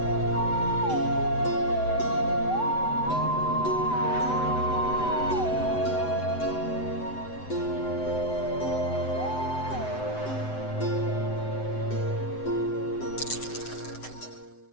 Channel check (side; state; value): right; late; 7.9 ms